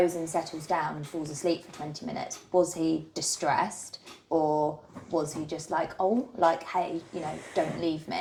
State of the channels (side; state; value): both; identical; correlation 1.00